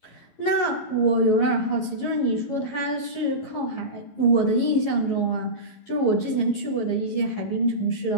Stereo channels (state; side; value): late; right; 11 ms